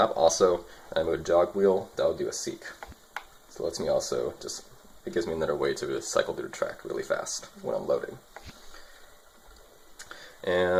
also, and I move a jog wheel, that'll do a seek. So it lets me also it gives me another way to cycle through the track really fast when I'm loading.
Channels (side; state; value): both; identical; correlation 1.00